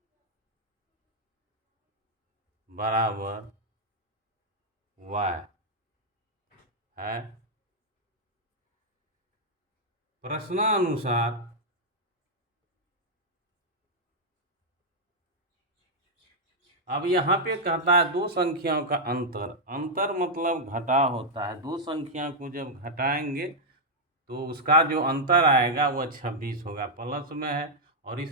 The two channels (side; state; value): both; normal; correlation -0.04